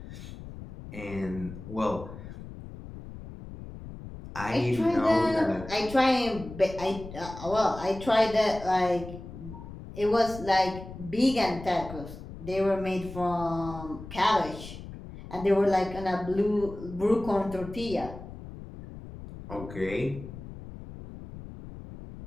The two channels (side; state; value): left; noise; rumble, 13 dB below the sound